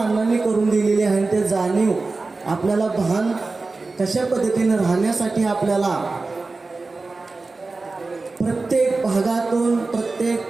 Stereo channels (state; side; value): quieter; left; 3.7 dB